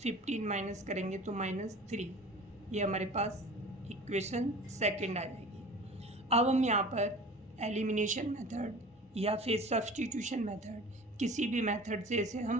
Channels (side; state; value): both; normal; correlation 0.41